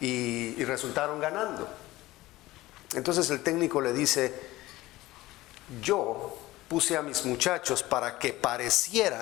resultaron ganando. Entonces el técnico le dice, yo puse a mis muchachos para que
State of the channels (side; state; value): right; quieter; 17.9 dB